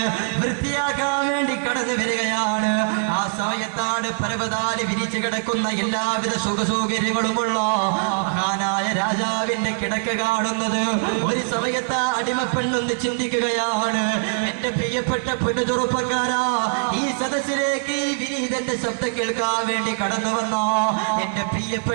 വൃത്തിയാക്കാൻ വേണ്ടി കടന്നു വരികയാണ്. ആ സമയത്താണ് പരവതാനി വിരിച്ചു കിടക്കുന്ന എല്ലാവിധ സുഖസൗകര്യങ്ങളുമുള്ള മഹാനായ രാജാവിന്റെ കിടക്ക കാണുന്നത്. ഒരു സമയത്ത് ആ അടിമപ്പെണ്ണൊന്ന് ചിന്തിക്കുകയാണ്, എന്റെ പ്രിയപ്പെട്ട പെണ്ണു ചെറുപ്പക്കാരാ, ഈ സദസ്സിലേക്ക് ഈ വിനീതന്റെ ശബ്ദം കേൾക്കാൻ വേണ്ടി കടന്നു വന്ന എന്റെ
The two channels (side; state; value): left; silent; 64 dB below the other